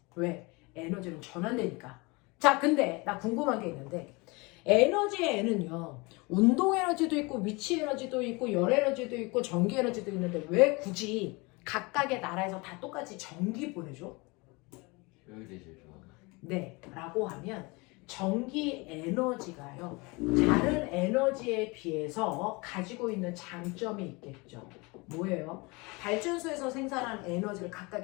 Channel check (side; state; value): right; quieter; 26.3 dB